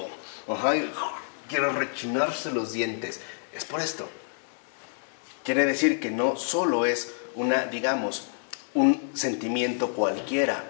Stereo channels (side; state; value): right; silent; digital silence